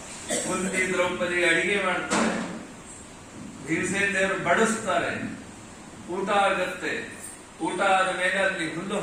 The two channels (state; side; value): identical; both; correlation 1.00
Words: ಕುಂತಿ ದ್ರೌಪದಿ ಅಡಿಗೆ ಮಾಡ್ತಾರೆ, ಭೀಮಸೇನ ದೇವರು ಬಡಿಸ್ತಾರೆ, ಊಟ ಆಗತ್ತೆ. ಊಟ ಆದ ಮೇಲೆ ಅಲ್ಲಿ ಹುಲ್ಲು